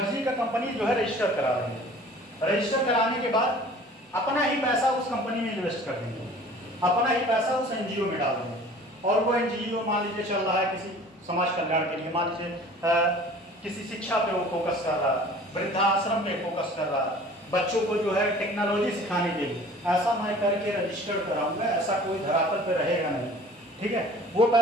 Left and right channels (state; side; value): normal; both; correlation 0.47